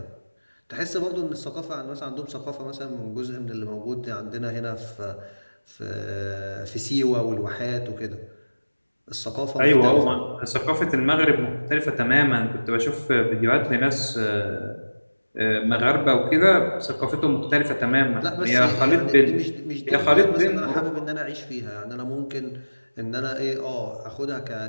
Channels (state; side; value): inverted; both; correlation -1.00